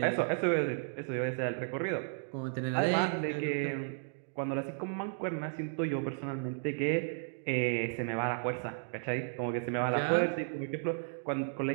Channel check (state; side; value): silent; left; digital silence